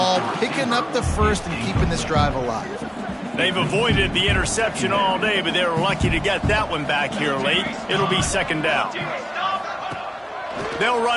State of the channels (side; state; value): both; identical; correlation 1.00